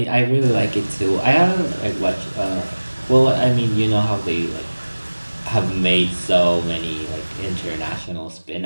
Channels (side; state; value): both; inverted; correlation -1.00